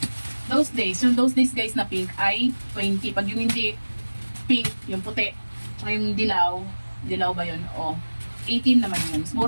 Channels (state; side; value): inverted; both; correlation -1.00